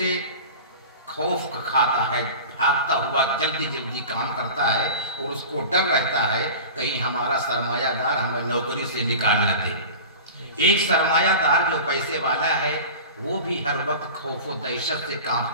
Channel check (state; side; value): inverted; both; correlation -0.35